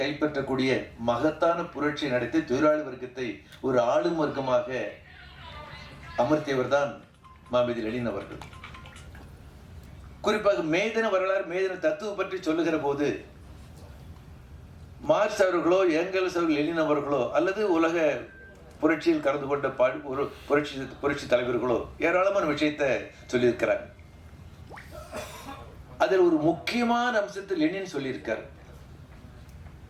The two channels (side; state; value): both; identical; correlation 1.00